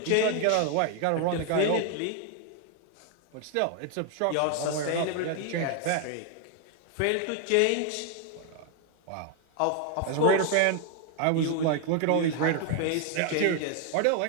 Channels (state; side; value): different; both; correlation 0.01